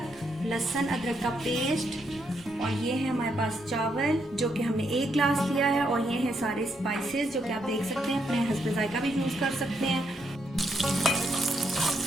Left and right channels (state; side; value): normal; both; correlation 0.77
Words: लहसुन अदरक का पेस्ट, और ये है हमारे पास चावल जो कि हमने 1 गिलास लिया है, और ये हैं सारे स्पाइसेस जो कि आप देख सकते हैं, अपने हस्ब जायका भी यूज़ कर सकते हैं।